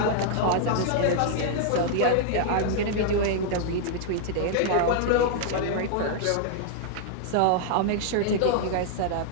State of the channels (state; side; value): different; both; correlation -0.01